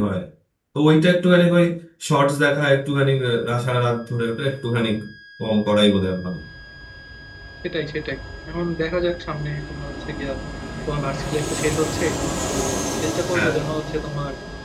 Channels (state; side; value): identical; both; correlation 1.00